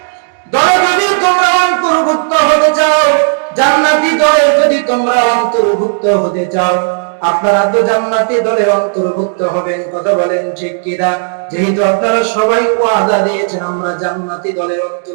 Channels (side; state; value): left; silent; digital silence